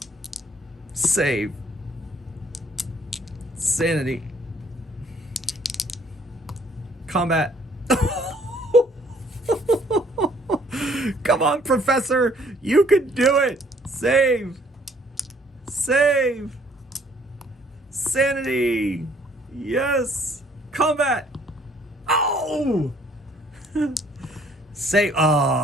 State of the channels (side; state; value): both; normal; correlation 0.61